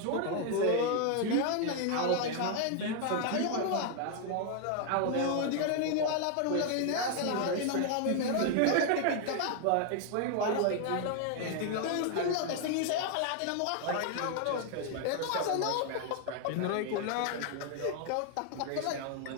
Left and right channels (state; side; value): different; both; correlation 0.00